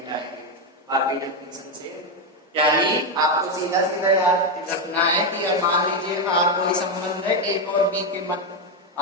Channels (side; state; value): both; normal; correlation 0.07